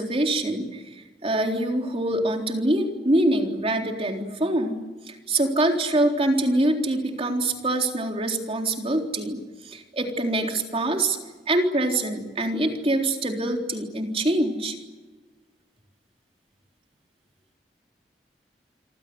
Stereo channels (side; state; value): both; normal; correlation 0.60